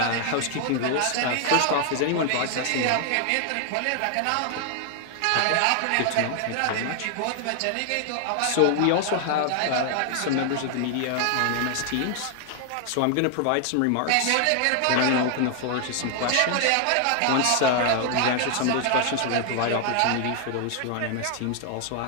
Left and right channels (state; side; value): different; both; correlation 0.00